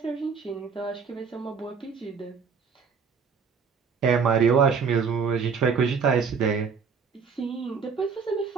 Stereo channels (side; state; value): left; quieter; 5.9 dB